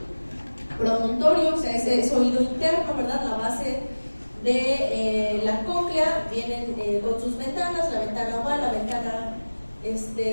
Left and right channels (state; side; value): inverted; both; correlation -1.00